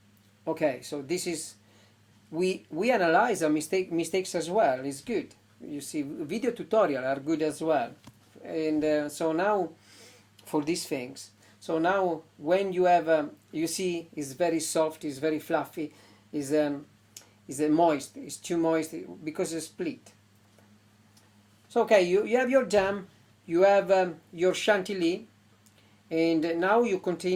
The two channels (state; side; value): identical; both; correlation 1.00